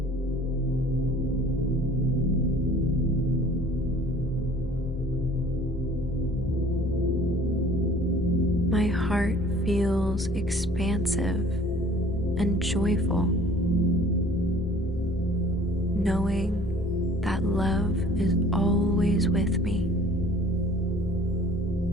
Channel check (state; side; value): normal; both; correlation 0.51